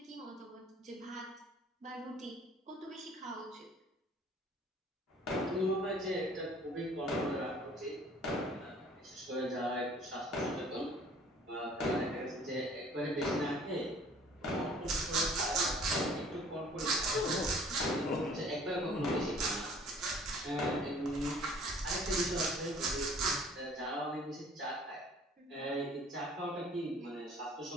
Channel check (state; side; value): normal; both; correlation 0.52